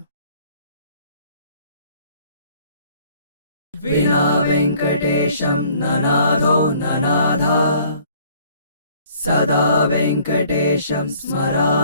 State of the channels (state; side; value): inverted; both; correlation -0.57